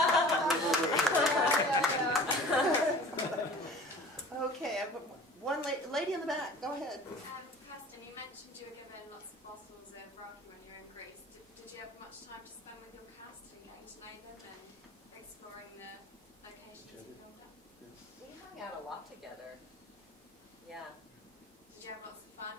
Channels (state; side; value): normal; both; correlation 0.43